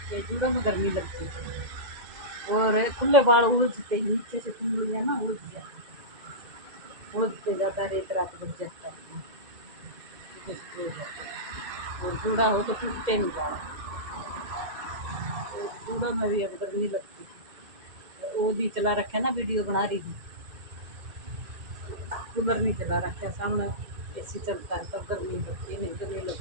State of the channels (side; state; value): left; late; 2.1 ms